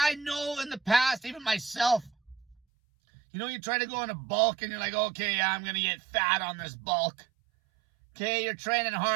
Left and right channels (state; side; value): drops out; left; at 2.6 s